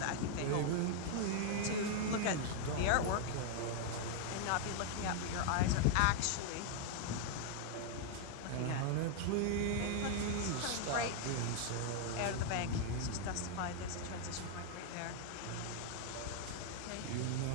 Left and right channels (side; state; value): both; different; correlation 0.00